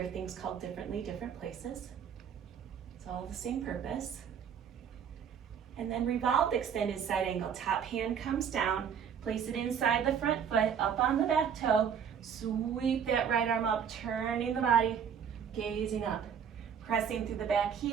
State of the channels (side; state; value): left; quieter; 7.7 dB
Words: things called differently, different places. It's all the same purpose. And then revolved extended side angle, top hand comes down, place it inside the front foot, up on the back toe, sweep that right arm up, turning the body, gazing up. Pressing through the back